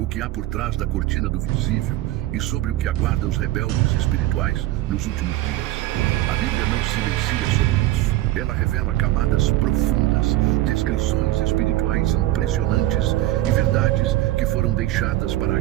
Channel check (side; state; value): left; quieter; 15.6 dB